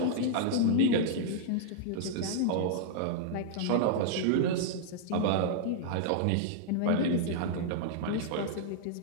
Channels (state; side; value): different; both; correlation -0.01